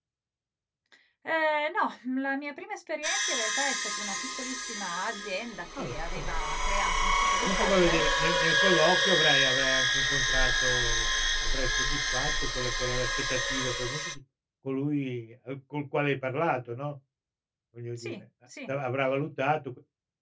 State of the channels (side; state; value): both; identical; correlation 1.00